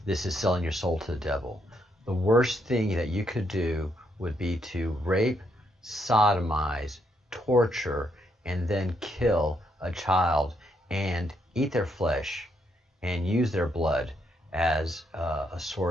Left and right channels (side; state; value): both; normal; correlation 0.76